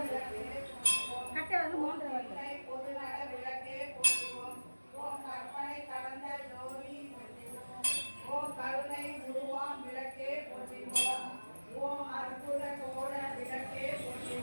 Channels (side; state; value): both; inverted; correlation -1.00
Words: பொது நட விளக்கே போற்றிவோம். ஓம் கற்பனை கடந்த ஜோதி போற்றிவோம். ஓம் கருணை உருவாம் விளக்கே போற்றிவோம். ஓம் அற்புத கோட விளக்கே